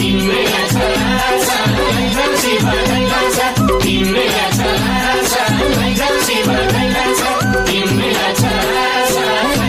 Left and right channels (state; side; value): identical; both; correlation 1.00